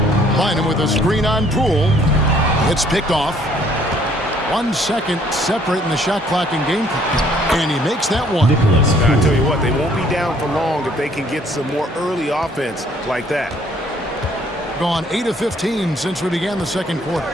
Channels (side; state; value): both; normal; correlation 0.62